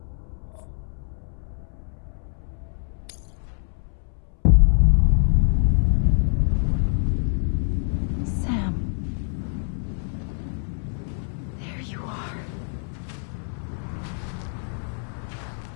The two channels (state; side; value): silent; right; 61 dB below the other